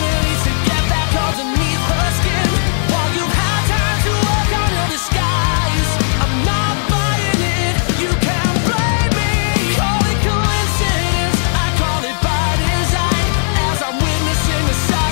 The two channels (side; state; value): right; silent; digital silence